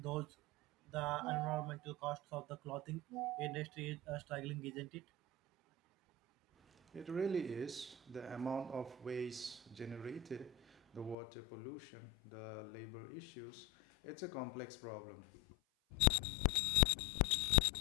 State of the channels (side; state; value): right; drops out; at 11.2 s